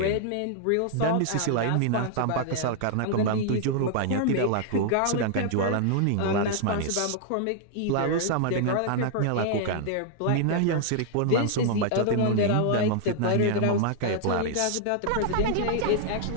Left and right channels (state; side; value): different; both; correlation -0.01